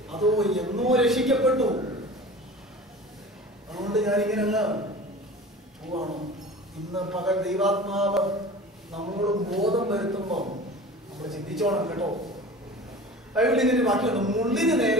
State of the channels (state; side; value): normal; both; correlation 0.38